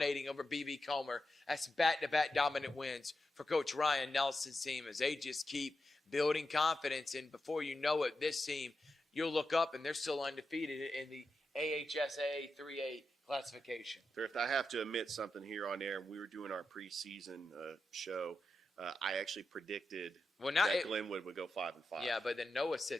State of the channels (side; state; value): both; normal; correlation 0.88